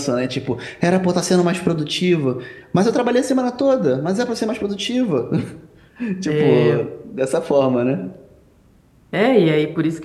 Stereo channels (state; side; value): identical; both; correlation 1.00